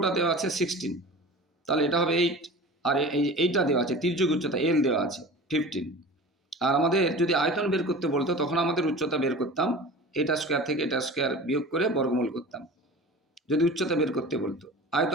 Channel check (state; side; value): normal; both; correlation 0.37